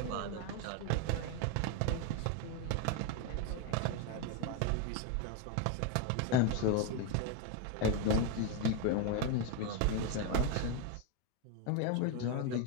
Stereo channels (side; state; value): both; different; correlation 0.01